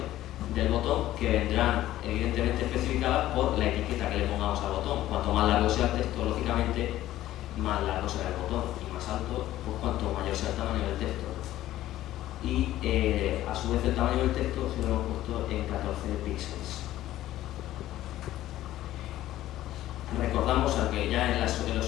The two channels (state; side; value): quieter; right; 14.2 dB